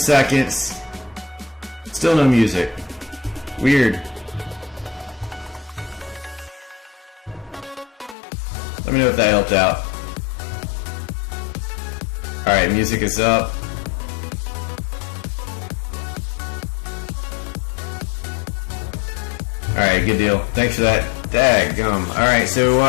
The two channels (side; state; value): right; drops out; at 8.2 s